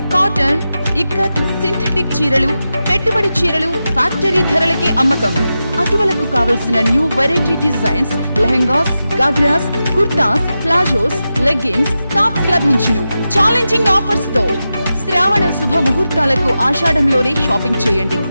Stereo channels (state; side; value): inverted; both; correlation -0.91